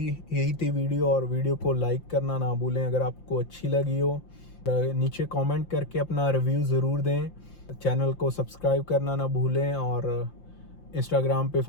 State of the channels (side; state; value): right; late; 5.8 ms